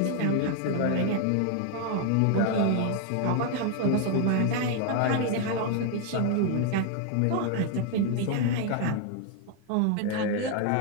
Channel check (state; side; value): different; both; correlation 0.00